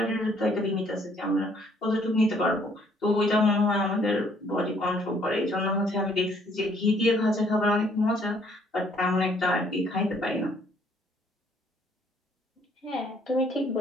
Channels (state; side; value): normal; both; correlation 0.64